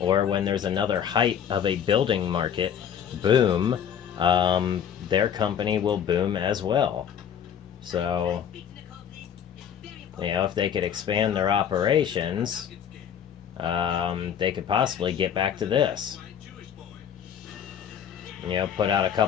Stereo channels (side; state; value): right; quieter; 8.6 dB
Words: when there's another height of a building market boom. Their company will boom as well. So, you know, if they could expand their operations, they could possibly get back to this. You know, put out a